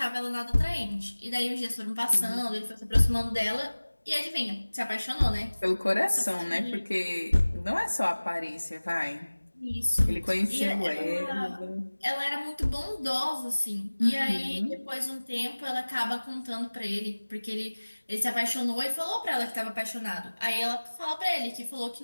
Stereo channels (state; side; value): inverted; both; correlation -1.00